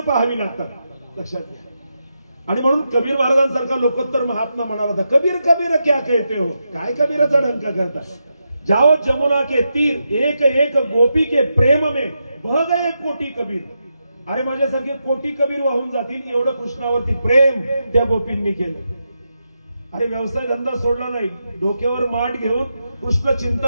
पाहावी लागतात, लक्षात घ्या. आणि म्हणून कबीर महाराजांसारखा लोकोत्तर महात्मा म्हणाला होता, कबीर कबीर क्या कहते हो, काय कबीराचा डंका करता, जाओ जमुना के तीर एक एक गोपी के प्रेम में बह गए कोटी कबीर. अरे माझ्यासारखे कोटी कबीर वाहून जातील एवढं कृष्णावरती प्रेम त्या गोपींनी केलं. अरे व्यवसाय धंदा सोडला नाही, डोक्यावर माठ घेऊन कृष्ण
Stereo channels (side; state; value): both; inverted; correlation -0.86